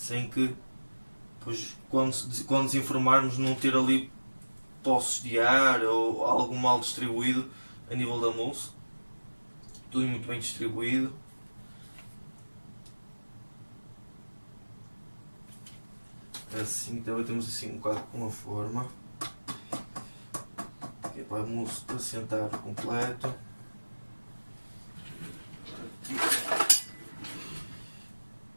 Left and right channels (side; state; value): both; inverted; correlation -1.00